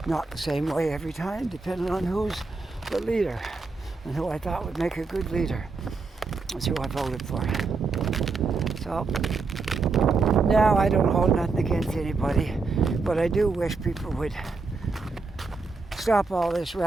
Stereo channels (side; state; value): left; quieter; 4.2 dB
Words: not the same way every time, depending on who's the leader and who I thought would make a good leader. That's who I voted for. So now I don't hold nothing against anybody, but I do wish people would stop all this